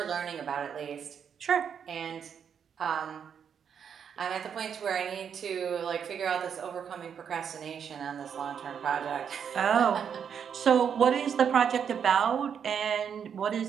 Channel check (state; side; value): quieter; left; 7.6 dB